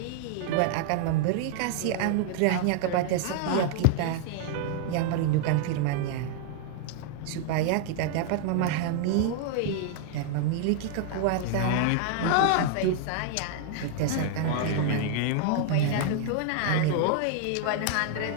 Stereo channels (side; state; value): both; different; correlation 0.00